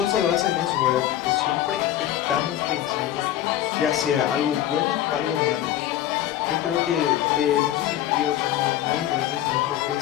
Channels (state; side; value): quieter; right; 12.3 dB